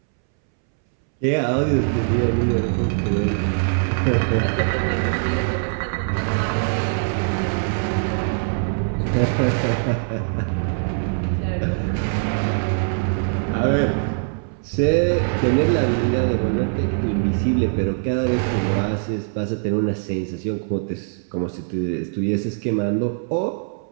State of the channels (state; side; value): silent; left; 64 dB below the other